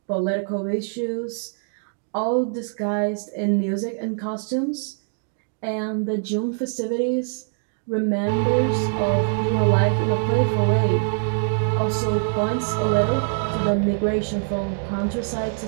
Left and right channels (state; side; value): silent; left; digital silence